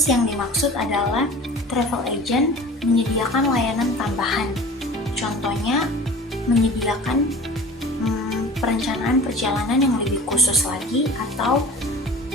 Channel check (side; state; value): both; normal; correlation 0.40